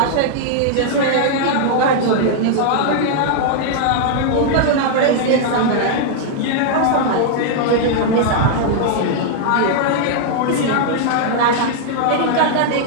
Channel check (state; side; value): different; both; correlation -0.01